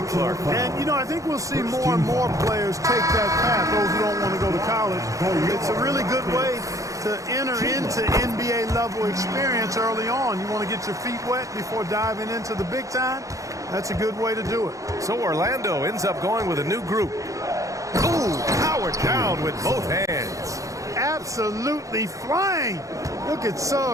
Clark. And, you know, I think we'll see more and more players take that path, those who don't want to go to college. It's a really good way to enter into NBA level experience early on. You want to get your feet wet before diving into the big time? That's a good way to do it. So Orlando ends up going with a new group. Ooh, powered down with both hands. Absolutely flying. Look at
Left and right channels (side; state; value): left; late; 0.16 ms